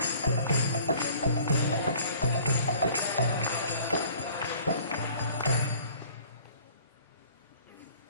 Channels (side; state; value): both; inverted; correlation -0.52